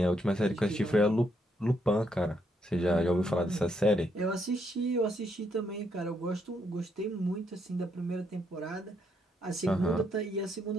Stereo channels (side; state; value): both; normal; correlation 0.75